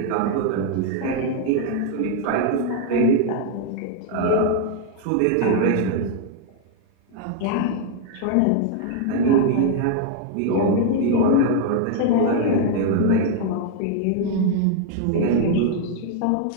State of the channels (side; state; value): both; different; correlation 0.00